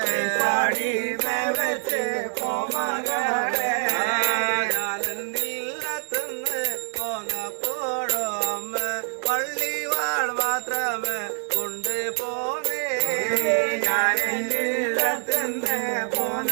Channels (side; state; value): left; silent; digital silence